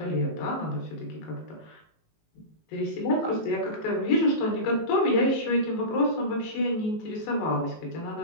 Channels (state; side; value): late; right; 19 ms